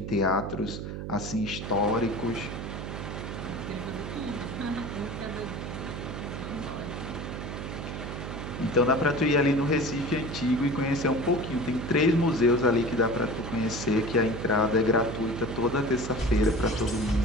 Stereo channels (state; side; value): noise; right; hum, 6 dB below the sound